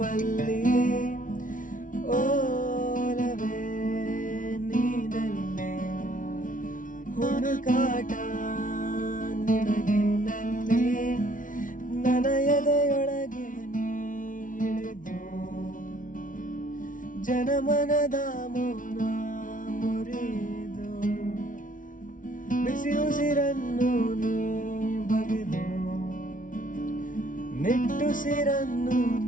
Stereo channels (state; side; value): late; right; 0.38 ms